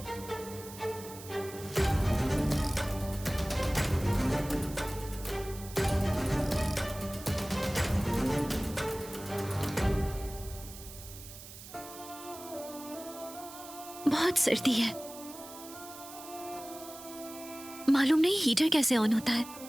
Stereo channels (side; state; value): right; noise; hiss, 15 dB below the sound